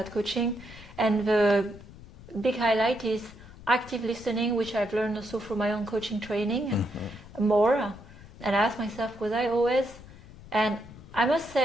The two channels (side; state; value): left; noise; rumble, 18 dB below the sound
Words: coaching, and the big highlight is active listening, which I've learned also from my own coaching training more. And I asked myself, was I always? And I must